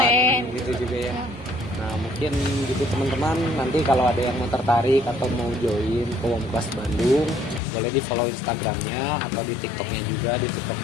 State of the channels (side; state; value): right; drops out; at 7.6 s